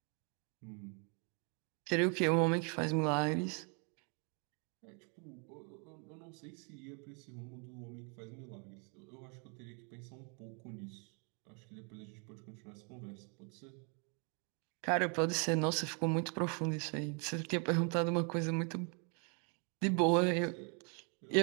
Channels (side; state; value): left; quieter; 37.1 dB